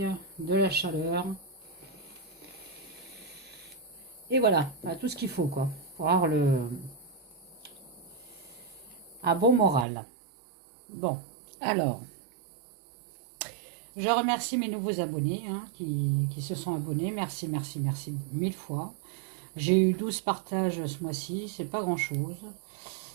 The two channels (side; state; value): left; drops out; at 9.9 s